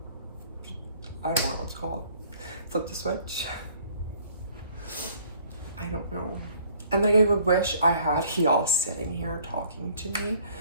I don't know what it's called, flip the switch? I don't know. And like, I would wish I had y'all sitting here talking to me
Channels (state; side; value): inverted; both; correlation -0.57